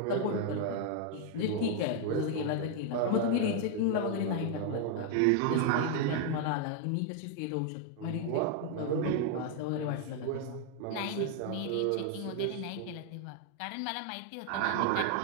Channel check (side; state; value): both; different; correlation 0.00